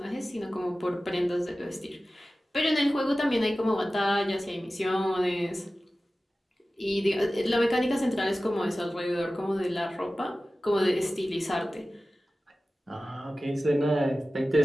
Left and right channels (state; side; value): normal; both; correlation 0.96